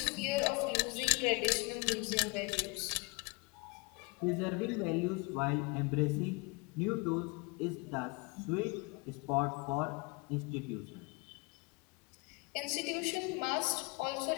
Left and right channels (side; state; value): right; quieter; 29.6 dB